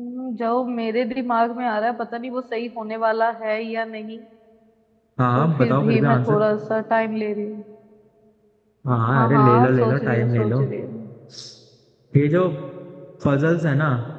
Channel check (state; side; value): identical; both; correlation 1.00